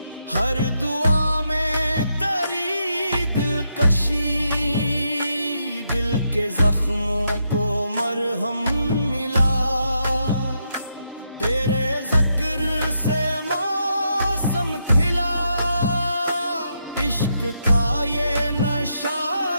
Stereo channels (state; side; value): inverted; both; correlation -0.80